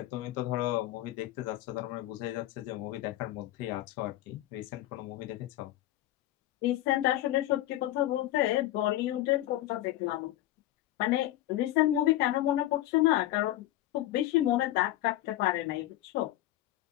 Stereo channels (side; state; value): right; quieter; 14.8 dB